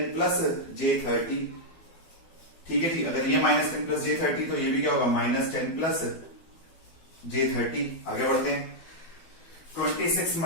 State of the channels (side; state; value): right; late; 12 ms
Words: प्लस J30, ठीक है जी। अगर ये माइनस 10 प्लस J30 तो ये भी क्या होगा, माइनस 10 प्लस J30। आगे बढ़ते हैं, 26